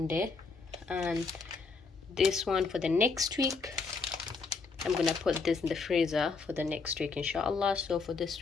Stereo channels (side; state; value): right; quieter; 4.5 dB